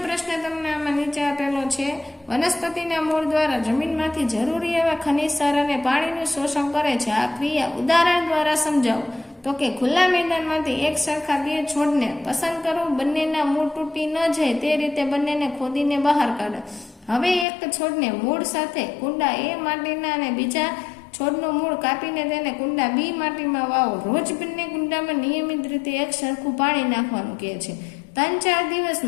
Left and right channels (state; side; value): drops out; right; at 17.4 s